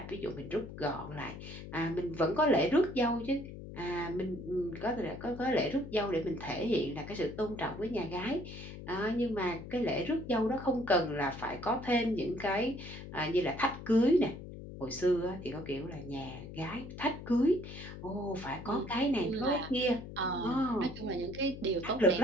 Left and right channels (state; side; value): noise; left; hum, 12 dB below the sound